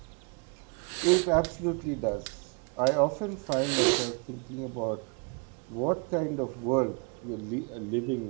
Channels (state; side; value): quieter; left; 34.8 dB